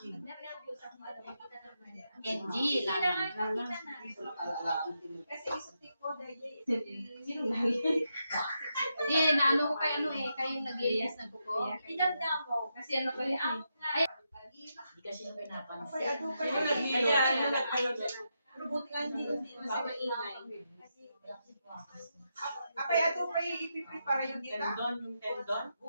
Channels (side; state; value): both; inverted; correlation -0.84